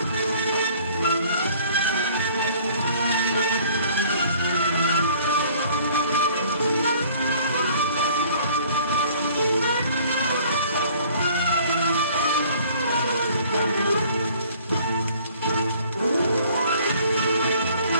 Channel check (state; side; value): inverted; both; correlation -0.55